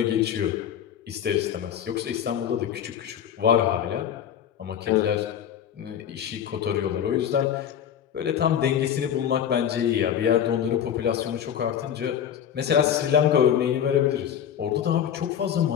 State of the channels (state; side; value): quieter; right; 9.3 dB